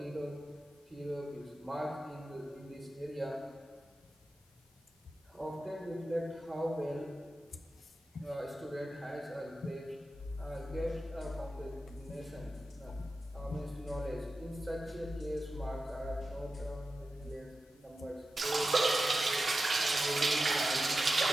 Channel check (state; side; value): normal; both; correlation 0.92